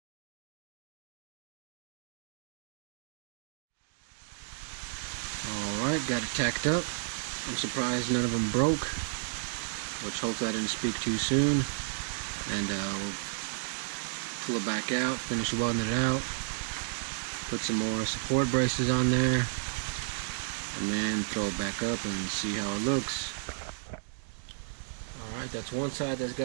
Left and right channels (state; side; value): silent; left; digital silence